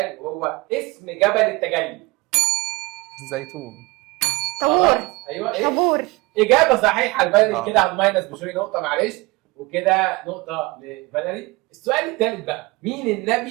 وهو اسم جبل التجلي. الزيتون. طابور. ايوه ايه؟ طابور. اجابه صحيحه لفاليري كده على الماينس بشوي نقطه معلش وكده نقطه لفاليري. السؤال الثالث بقى مين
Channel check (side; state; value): left; quieter; 23.3 dB